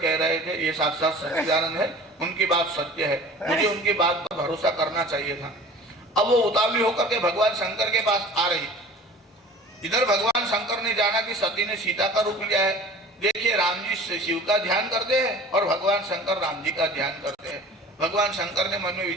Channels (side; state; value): both; normal; correlation 0.43